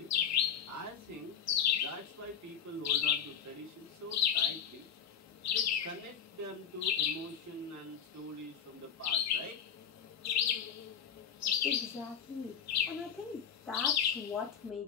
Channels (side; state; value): right; quieter; 7.9 dB